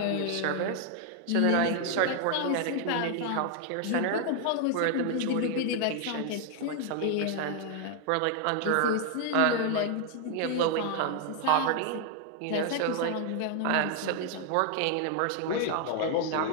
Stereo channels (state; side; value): different; both; correlation 0.00